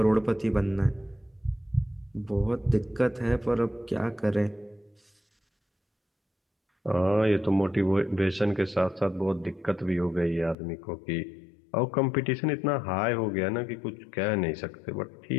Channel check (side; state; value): right; drops out; at 10.6 s